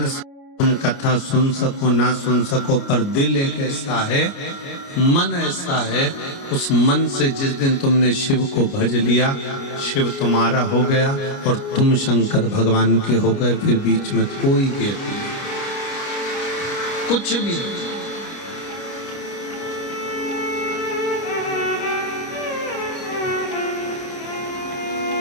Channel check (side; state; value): right; late; 29 ms